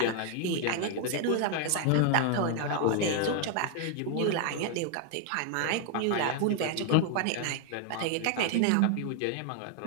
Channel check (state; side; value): different; both; correlation 0.00